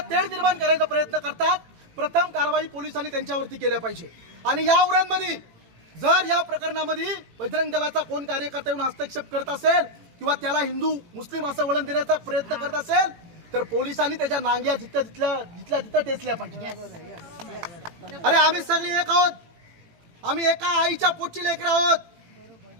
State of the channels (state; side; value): late; left; 18 ms